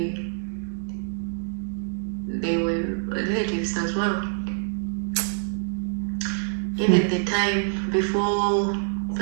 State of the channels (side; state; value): left; silent; digital silence